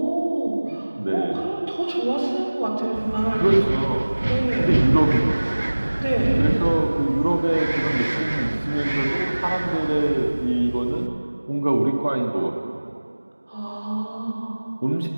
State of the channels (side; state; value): both; inverted; correlation -1.00